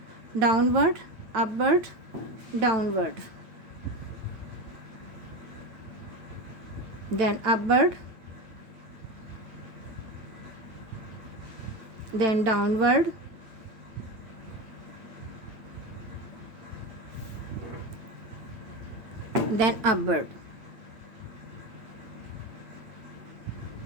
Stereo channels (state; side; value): late; left; 9.0 ms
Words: downward, upward, downward, then upward, then downward, then upward.